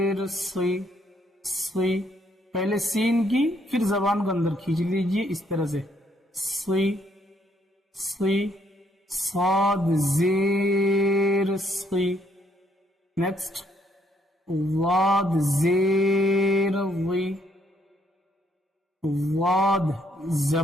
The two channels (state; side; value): normal; both; correlation 0.70